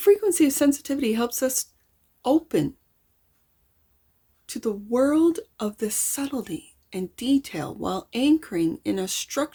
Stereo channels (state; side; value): identical; both; correlation 1.00